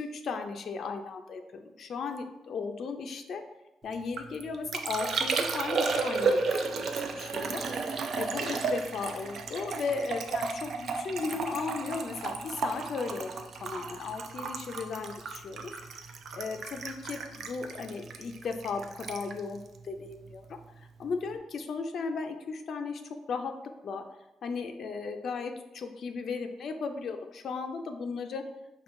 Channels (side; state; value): both; normal; correlation 0.73